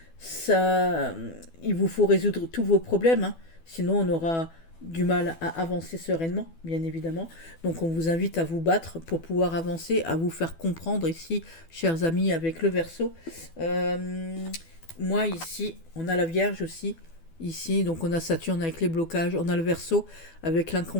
Ça, il vous faut résoudre tous vos problèmes, hein, sinon on aura du mal à avancer sereinement, bien évidemment. Donc on vous invite à vous battre pour pouvoir avancer, à vous faire comprendre ici, chers amis, avec le Verseau. Moi ici, on a la Vierge aussi, Ici, donc on a Saturne avec les blocages, on a le Verseau avec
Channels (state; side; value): late; right; 12 ms